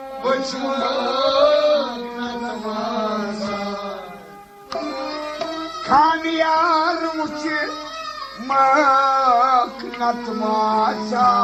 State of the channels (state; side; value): identical; both; correlation 1.00